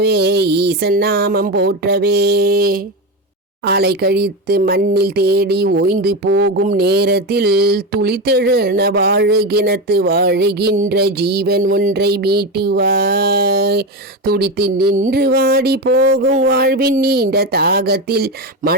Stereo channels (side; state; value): both; normal; correlation 0.16